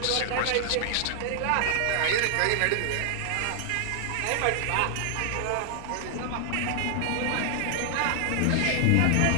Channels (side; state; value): both; different; correlation 0.00